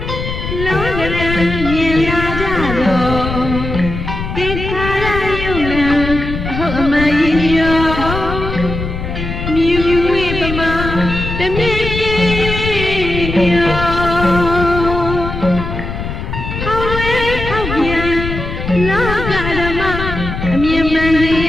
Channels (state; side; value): noise; left; rumble, 6 dB below the sound